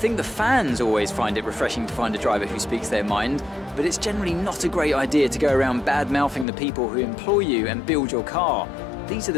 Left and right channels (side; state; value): right; drops out; at 6.5 s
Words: the fans always find it refreshing to find a driver who speaks their mind, but it's generally not a great idea to go around bad-mouthing the people who employ you and build your car. These are